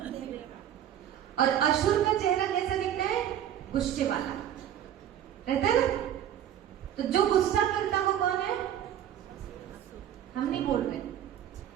और असुर का चेहरा कैसा दिखता है? गुस्से वाला रहता है ना। तो जो गुस्सा करता वो कौन है? हम नहीं बोल रहे,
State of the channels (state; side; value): quieter; left; 10.6 dB